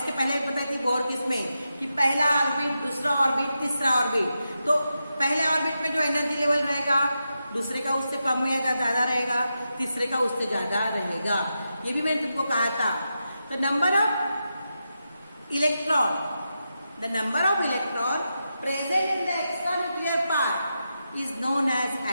पहले बताई थी बोर किसमें, कि पहला ऑर्बिट, दूसरा ऑर्बिट, तीसरा ऑर्बिट। तो पहले ऑर्बिट में जो एनर्जी लेवल रहेगा दूसरे का उससे कम या ज्यादा रहेगा, तीसरे का उससे ज्यादा रहेगा। ये भी मैंने तुमको कहा था। तो number of electron, the number of electron present in the extra nuclear part is known as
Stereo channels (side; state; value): both; inverted; correlation -0.88